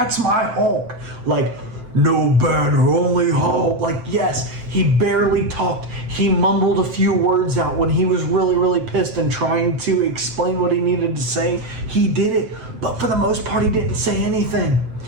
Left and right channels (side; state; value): left; late; 7.9 ms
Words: my Hulk. Like, no banner, only Hulk. Like, yes, he barely talked. He mumbled a few words out when he was really, really pissed and trying to explain what he needed to say. He did it, but for the most part, he didn't say anything.